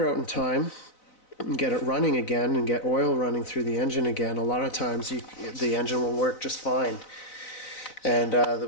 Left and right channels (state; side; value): late; right; 4.0 ms